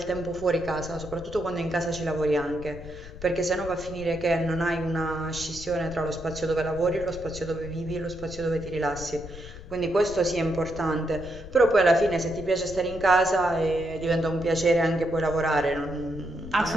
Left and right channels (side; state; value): left; noise; rumble, 13 dB below the sound